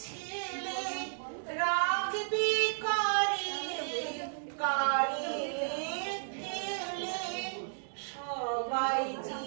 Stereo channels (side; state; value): left; silent; digital silence